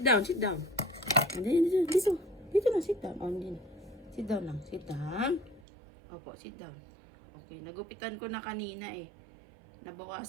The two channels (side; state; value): left; drops out; at 5.7 s